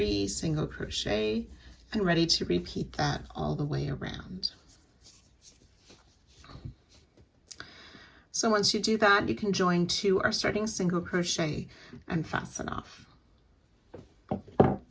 single crochet, and ready to repeat that all the way around. So once you do that, you can join to our starting single crochet and fasten off.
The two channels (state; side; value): identical; both; correlation 1.00